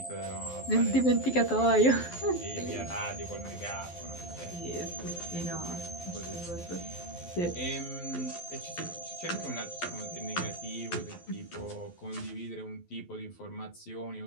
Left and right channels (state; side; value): late; right; 12 ms